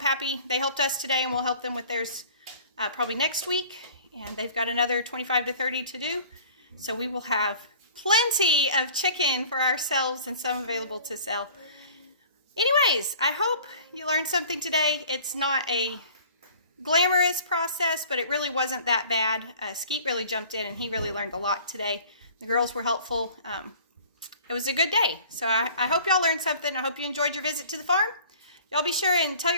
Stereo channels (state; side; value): inverted; both; correlation -0.47